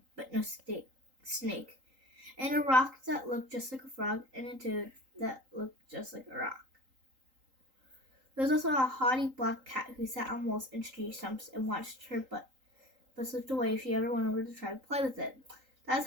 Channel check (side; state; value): left; late; 3.8 ms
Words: but no snake, and a rock that looked just like a frog, and a toad that looked just like a rock. There was also a haughty black cat who sat on walls and tree stumps and watched her but slipped away if she ever went over to try to play with it. That's